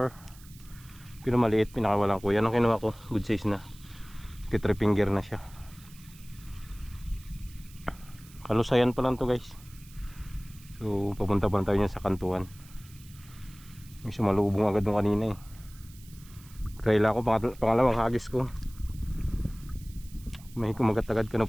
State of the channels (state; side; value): noise; right; hiss, 23 dB below the sound